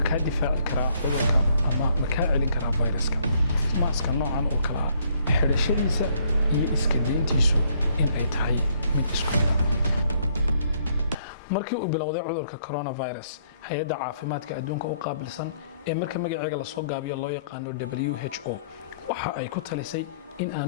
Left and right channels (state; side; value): inverted; both; correlation -0.66